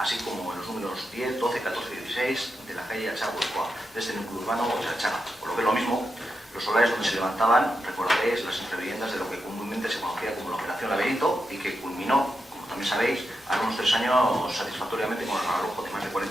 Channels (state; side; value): normal; both; correlation 0.87